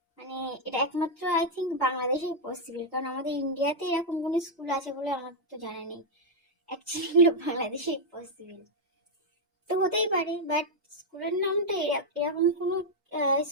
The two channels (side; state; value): both; normal; correlation -0.01